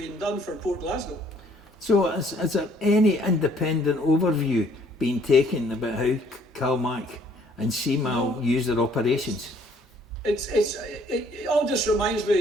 done for Port Glasgow. So has there any independent overview been taken about how CalMac and CMAL use their operations? It all just reminds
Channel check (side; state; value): both; normal; correlation 0.62